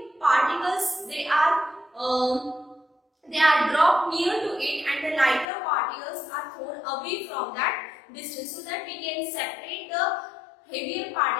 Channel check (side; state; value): right; drops out; at 5.5 s